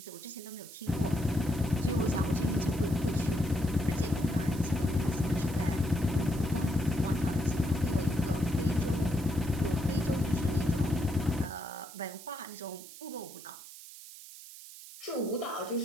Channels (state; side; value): noise; right; hiss, 15 dB below the sound